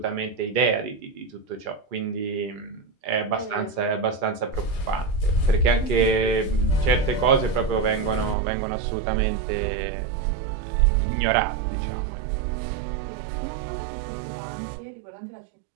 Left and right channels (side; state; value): left; drops out; at 8.3 s